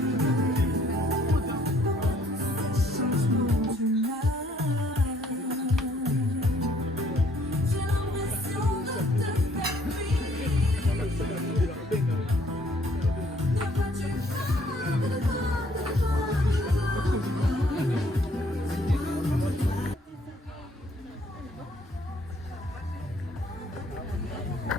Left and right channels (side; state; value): both; normal; correlation 0.63